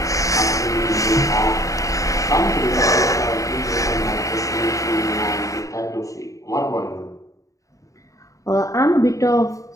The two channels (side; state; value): right; late; 0.16 ms